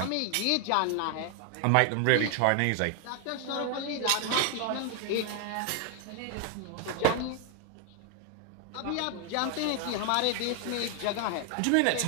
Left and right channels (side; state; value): both; different; correlation 0.00